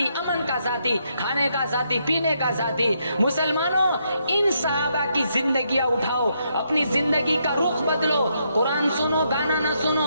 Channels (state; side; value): inverted; both; correlation -0.77